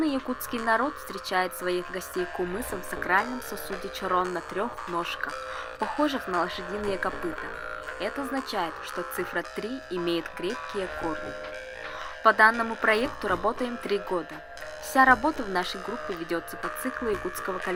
якутский народ встречает своих гостей кумысом в сакральном сосуде чорон на 3 ножках, похожих на лошадиные копыта. Это означает, что цифра 3 имеет крепкие корни. По данному проекту работаем 3 года. Вся работа в нашей группе ведется по циклу якутского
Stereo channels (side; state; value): both; identical; correlation 1.00